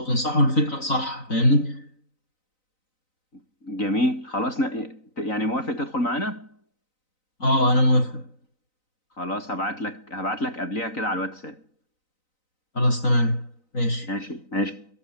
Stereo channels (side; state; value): right; late; 3.9 ms